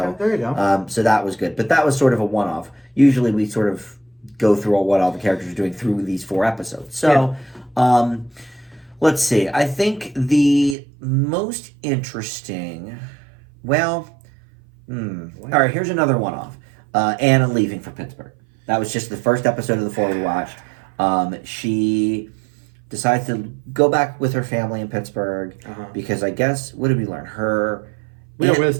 there you go. So that was good, but that was sort of a one-off. Usually we sort of go through what all the characters are doing through these 4 episodes. So, let's see. I think the most interesting. Well, all right. Here's another one-off. Anna leaving for Pittsburgh. That was just the first episode of the 4 we watched. She decides to go back with her family in Pittsburgh because I guess, what did we learn? Her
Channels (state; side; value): drops out; left; at 10.8 s